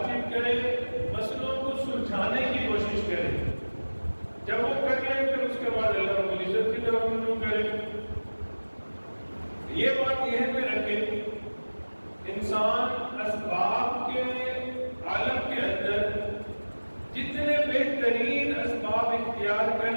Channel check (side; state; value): both; inverted; correlation -1.00